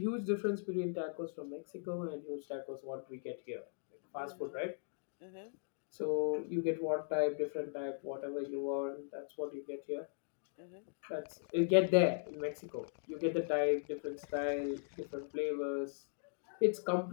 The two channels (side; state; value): right; silent; digital silence